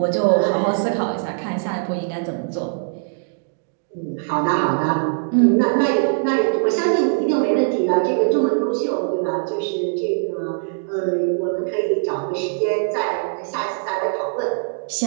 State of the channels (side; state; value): left; silent; digital silence